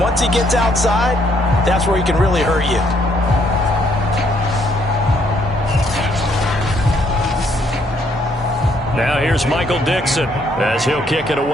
he gets outside, that's where he can really hurt you. Now here's Michael Dixon as he'll kick it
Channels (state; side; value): normal; both; correlation 0.69